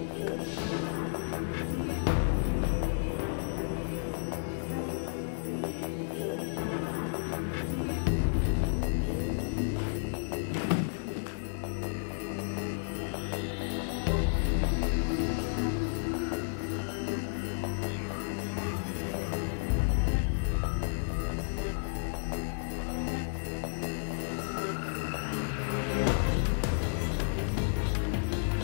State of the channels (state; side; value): silent; right; digital silence